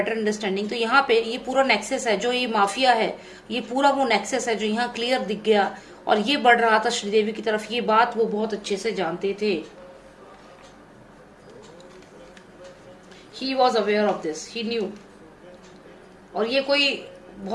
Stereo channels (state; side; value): identical; both; correlation 1.00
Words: अंडरस्टैंडिंग। तो यहाँ पे ये पूरा नेक्सस है, जो ये माफिया है, ये पूरा वो नेक्सस है जो यहाँ क्लियर दिख गया, और ये बढ़ रहा था श्रीदेवी की तरफ। ये बात वो बहुत अच्छे से जानते थे। ही was aware of this, he new. और ये कोई